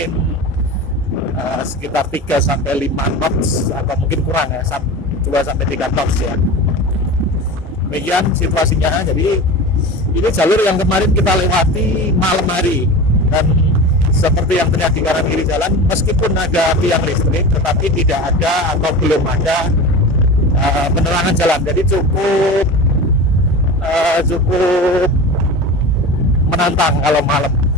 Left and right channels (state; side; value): normal; both; correlation 0.31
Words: sekitar 3 sampai 5 knots atau mungkin kurang ya, 2 sampai 3 knots ya. Demikian situasinya. Jadi ini jalur yang kemarin kita lewati malam hari, dan seperti yang terlihat di kanan kiri jalan, meskipun ada tiang listrik tetapi tidak ada atau belum ada penerangan jalan. Jadi cukup menantang kalau malam